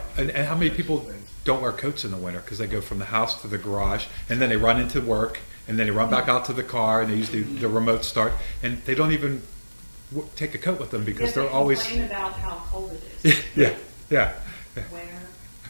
And how many people things. don't wear coats in the winter because they go from the house to the garage, and then they run into work, and then they run back out to the car, and they use the remote start, and they don't even take a coat with them because Yet they're they always complain about how cold it is. yeah. Wear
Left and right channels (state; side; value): inverted; both; correlation -1.00